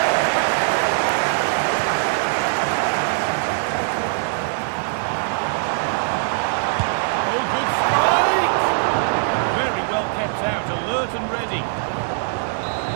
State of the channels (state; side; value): silent; left; digital silence